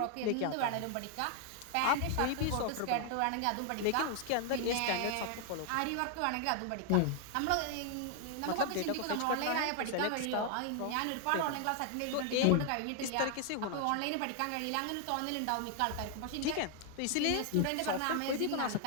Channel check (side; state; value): both; different; correlation 0.00